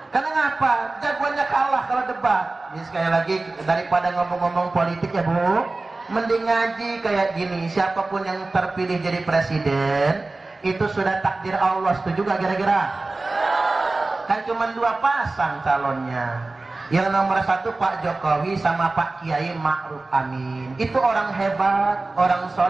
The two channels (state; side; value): quieter; left; 3.3 dB